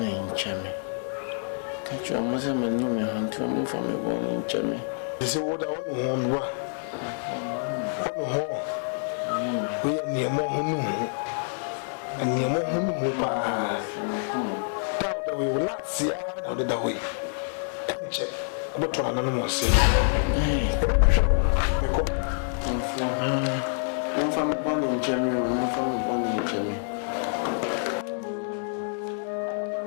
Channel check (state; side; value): silent; right; digital silence